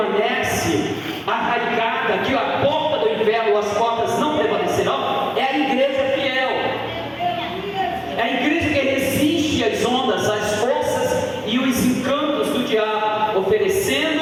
arraigada, que a porta do inferno, as portas não prevalecerão, é a igreja fiel. É a igreja que resiste às ondas, às forças e os encantos do diabo,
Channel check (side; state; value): both; identical; correlation 1.00